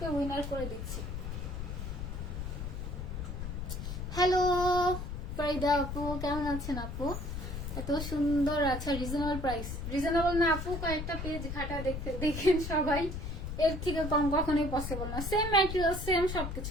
উইনার করে দিচ্ছি। হ্যালো ফারিদা আপু, কেমন আছেন আপু? এত সুন্দর। আচ্ছা রিজনেবল প্রাইস, রিজনেবল না আপু, কয়েকটা পেজ ঘাটা দেখতে দেখেন সবাই, এর থেকে কম কখনোই পসিবল না। সেম ম্যাটেরিয়াল, সেম সবকিছু,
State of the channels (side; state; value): left; noise; rumble, 5 dB below the sound